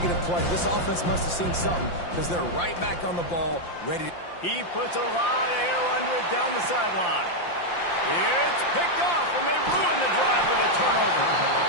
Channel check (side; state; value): right; late; 5.8 ms